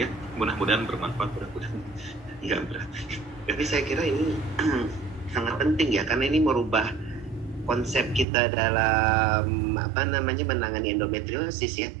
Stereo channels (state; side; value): drops out; left; at 8.2 s